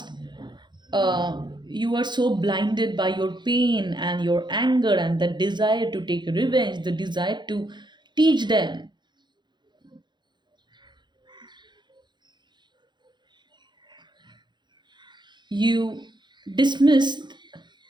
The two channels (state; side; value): late; left; 0.21 ms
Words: you were so blinded by your pain and your anger and the desire to take revenge, the desire to teach them, you dismissed